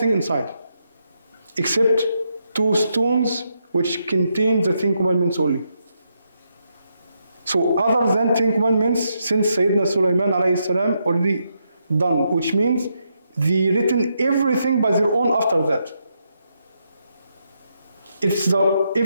inside, except 2 stones which contain the 10 commandments only. So other than 10 commandments, since Sayyidina Sulaiman already done, which means they written everything by their own after that. It's the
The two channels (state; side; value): inverted; both; correlation -0.80